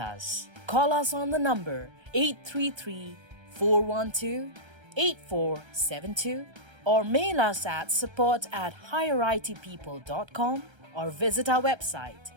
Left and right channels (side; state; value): left; late; 1.3 ms